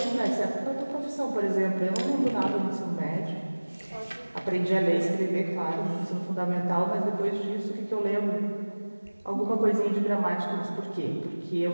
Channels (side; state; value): both; inverted; correlation -1.00